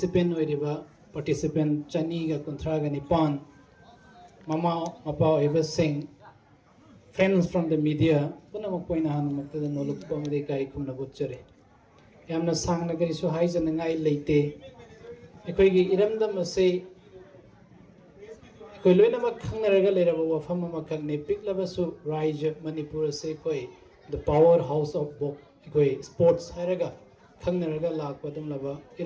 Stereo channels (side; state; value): both; identical; correlation 1.00